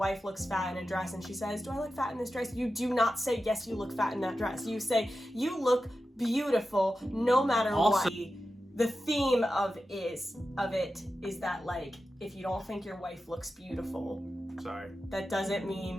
looks fat in a dress and she says, "Do I look fat in this dress?" You do not say, "Yes, you look fat in that dress." You say, "You look beautiful no matter what." The theme of it is that like if you don't think your wife looks beautiful, sorry, that doesn't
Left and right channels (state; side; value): normal; both; correlation 0.92